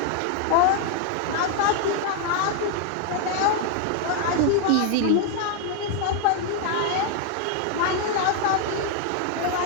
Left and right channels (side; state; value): both; different; correlation 0.00